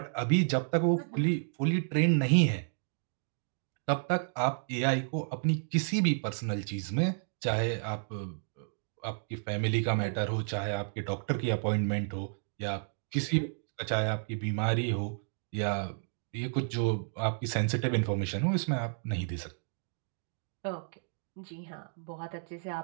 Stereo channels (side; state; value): left; silent; digital silence